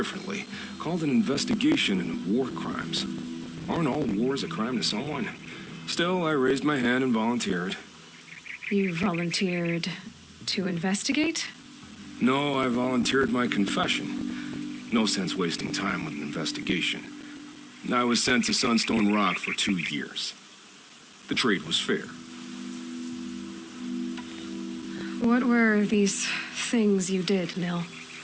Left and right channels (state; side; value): identical; both; correlation 1.00